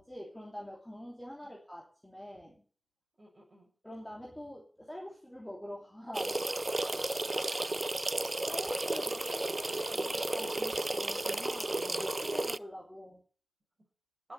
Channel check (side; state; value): both; normal; correlation 0.97